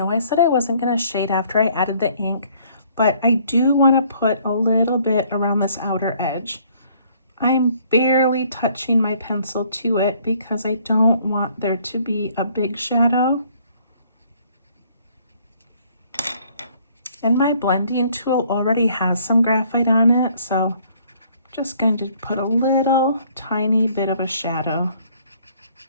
I said I wasn't going to shade after I added the ink, but I do want to put a little bit around this outer edge. I'm barely touching my pencil to it because I don't want there to be a big shadow. And my blending tool already has some graphite on it, so I'm just going to put a little tiny bit of a shadow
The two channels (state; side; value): inverted; both; correlation -0.61